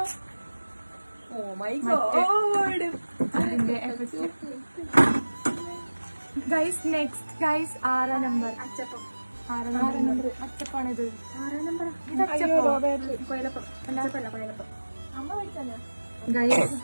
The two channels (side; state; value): both; inverted; correlation -1.00